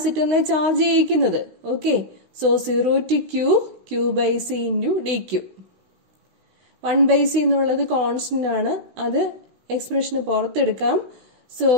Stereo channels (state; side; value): late; left; 16 ms